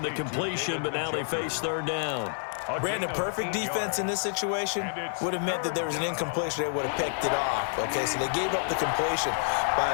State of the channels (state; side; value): silent; right; digital silence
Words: the completion, but now they face 3rd down. Brandon, perfect defense in this situation would have meant that there was an incompletion. They would have picked it off. Okay, so they gave up the completion. But